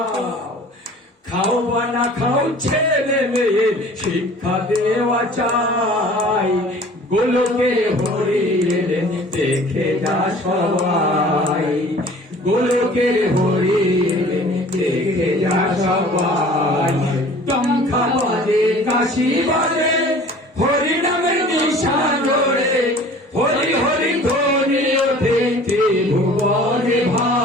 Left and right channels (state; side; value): normal; both; correlation 0.47